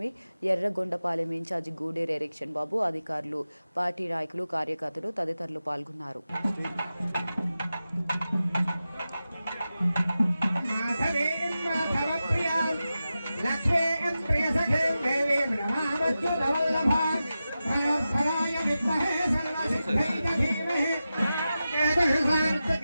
Yerragondapalem incharge Guderu Erikshan Babu, అధికారులు, పార్టీ నాయకులు, కార్యకర్తలు తదితరులు పాల్గొన్నారు. लक्ष्मीं प्रियसखीं देवीं नमामच्युतवल्लभां भयोत्फलाय विद्महे सर्वसिद्धिं धीमहि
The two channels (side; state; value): both; inverted; correlation -0.93